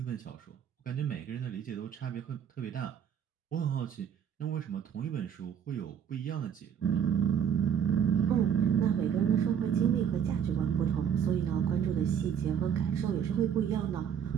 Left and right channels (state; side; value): quieter; left; 8.4 dB